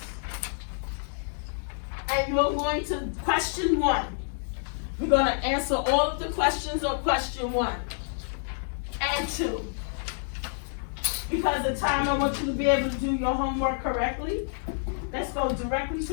and you're going to question 1. We're going to answer all of the questions on question 1 and 2. Because of time, I want you to be able to do your homework correctly. Let's go directly to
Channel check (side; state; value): right; silent; digital silence